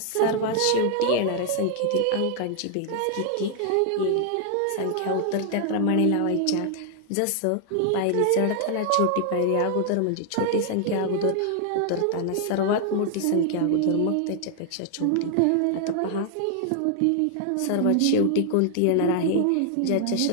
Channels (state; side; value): different; both; correlation 0.00